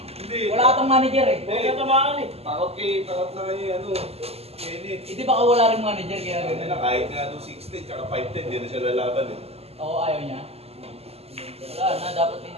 Hindi. Wala atang manager eh. Hindi. Natamaan eh. Takot na kayo ano. Kenneth. Hindi baka wala rin manager kaya Hindi ganun. na kahit nga 260 tsaka 510, hindi na siya lalaban eh. Oo, ayaw niya. Wala na, dapat din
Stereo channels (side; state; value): left; late; 0.29 ms